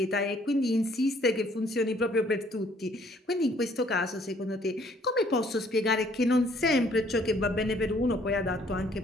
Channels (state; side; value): normal; both; correlation 0.62